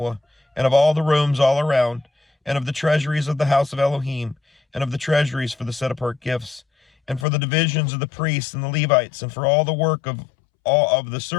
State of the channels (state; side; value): drops out; right; at 7.2 s